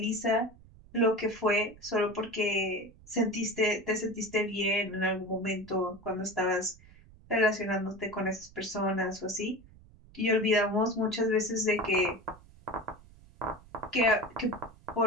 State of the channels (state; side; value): noise; right; rumble, 24 dB below the sound